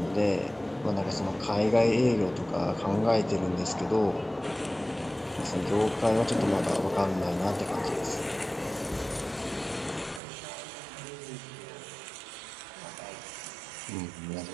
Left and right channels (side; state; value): left; drops out; at 10.2 s